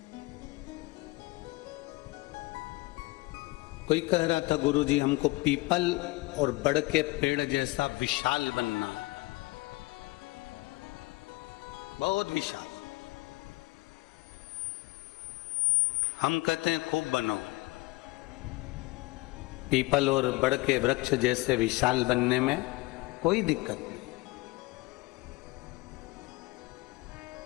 कोई कह रहा था गुरुजी हमको पीपल और बड़ के पेड़ जैसा विशाल बनना, बहुत विशाल। हम कहते हैं खूब बनो। पीपल और बड़ के वृक्ष जैसे विशाल बनने में कोई दिक्कत नहीं।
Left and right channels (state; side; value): quieter; right; 22.5 dB